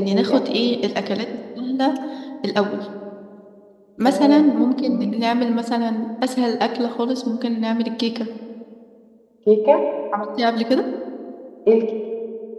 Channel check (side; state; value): both; identical; correlation 1.00